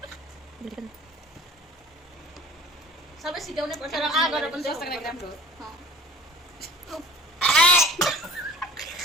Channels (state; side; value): normal; both; correlation 0.46